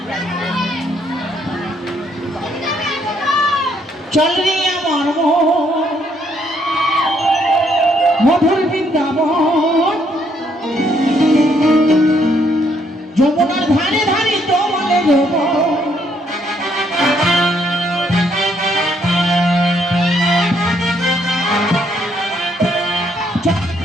চল রে আমার মধুর বৃন্দাবন, যমুনার ধারে ধারে তোমালে যাব।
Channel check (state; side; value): normal; both; correlation 0.71